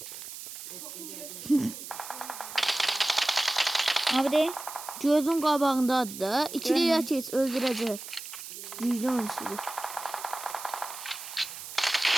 Abi de gözün qabağındadır da. İkiliyə keç, öldürəcək. Güclü oyunçudur.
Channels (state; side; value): noise; right; hiss, 11 dB below the sound